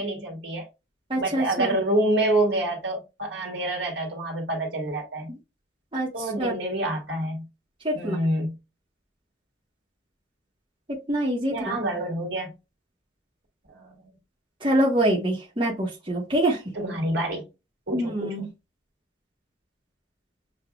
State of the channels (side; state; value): both; normal; correlation 0.44